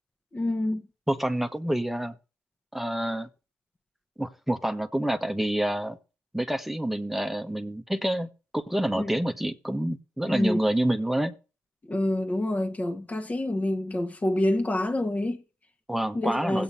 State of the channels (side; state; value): both; normal; correlation 0.96